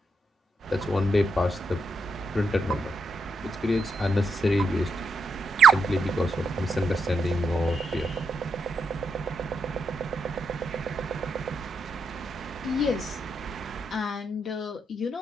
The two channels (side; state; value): both; normal; correlation 0.81